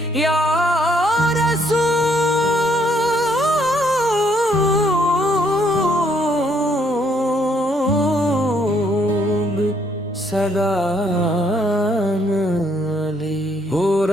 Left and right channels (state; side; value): normal; both; correlation 0.69